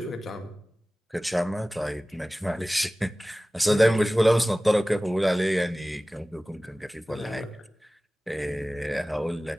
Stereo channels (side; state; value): both; normal; correlation 0.98